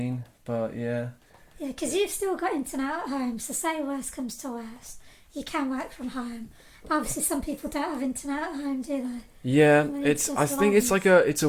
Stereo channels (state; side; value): identical; both; correlation 1.00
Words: But yeah, Yeah, because you've still got internet at home, so say worst comes to worst, you can work from home. But obviously, some people don't have internet at home, do they? yeah. And it's It's I just think it's life. like